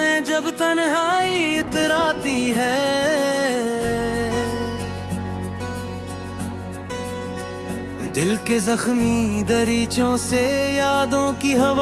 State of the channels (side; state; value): both; identical; correlation 1.00